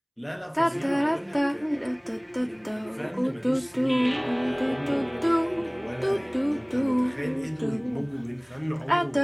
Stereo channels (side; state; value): both; identical; correlation 1.00